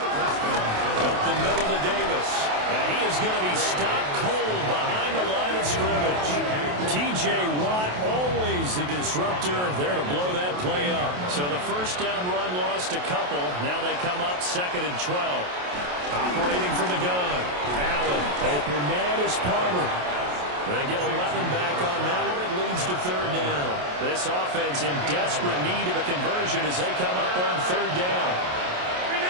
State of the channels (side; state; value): left; late; 28 ms